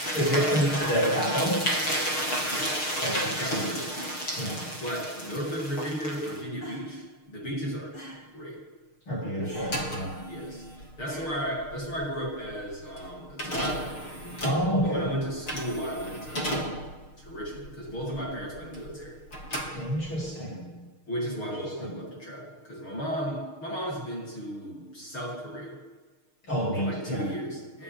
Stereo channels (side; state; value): right; late; 6.5 ms